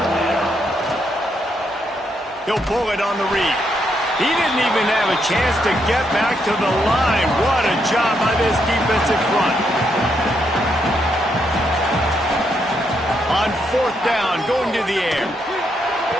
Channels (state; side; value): normal; both; correlation 0.77